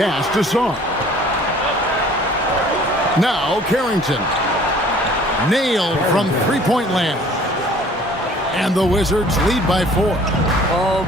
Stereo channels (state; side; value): normal; both; correlation 0.52